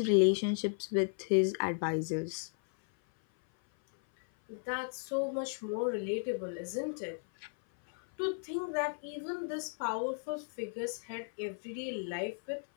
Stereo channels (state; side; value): silent; right; 54 dB below the other